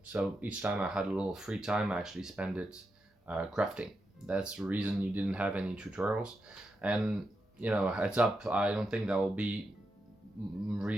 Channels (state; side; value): normal; both; correlation 0.86